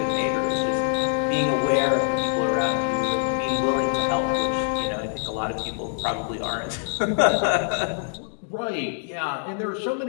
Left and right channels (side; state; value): right; silent; digital silence